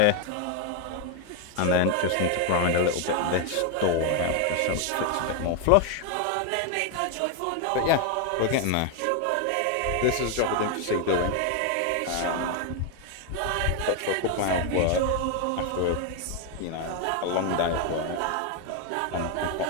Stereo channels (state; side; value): different; both; correlation 0.01